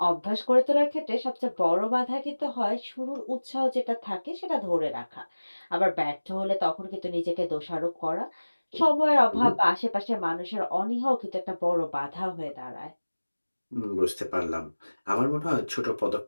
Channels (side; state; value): both; inverted; correlation -1.00